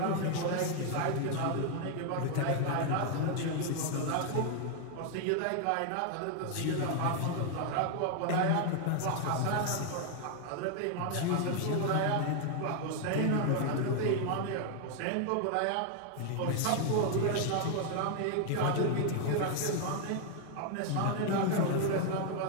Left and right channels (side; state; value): both; different; correlation 0.00